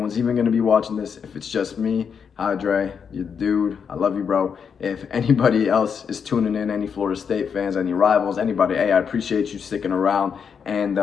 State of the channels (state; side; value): quieter; right; 6.7 dB